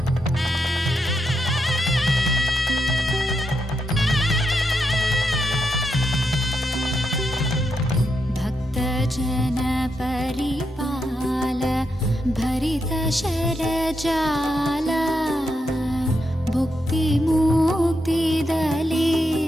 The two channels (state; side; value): normal; both; correlation 0.83